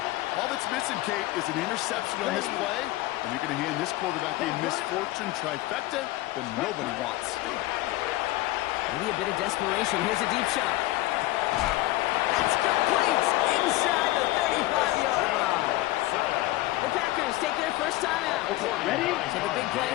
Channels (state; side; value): quieter; right; 17.9 dB